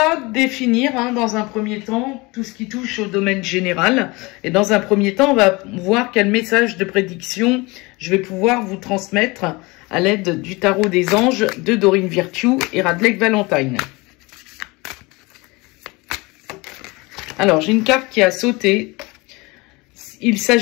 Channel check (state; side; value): quieter; right; 24.5 dB